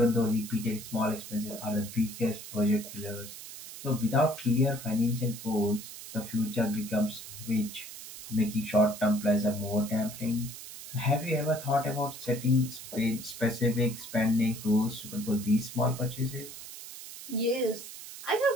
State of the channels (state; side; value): noise; right; hiss, 12 dB below the sound